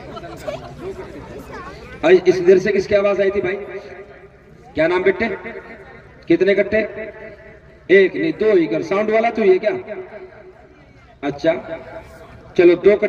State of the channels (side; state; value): both; identical; correlation 1.00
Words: اس دیر سے کس کی آواز آئی تھی بھائی؟ کیا نام بیٹے؟ کتنے کٹے؟ 1 نہیں 2 ہی کر. ساؤنڈ والا تو یہ کیا؟ اچھا چلو 2